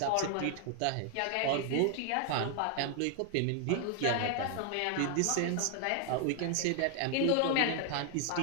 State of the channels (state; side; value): different; both; correlation 0.00